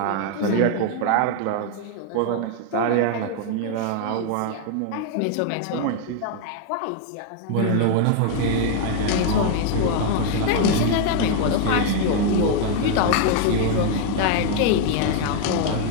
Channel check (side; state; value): both; different; correlation 0.00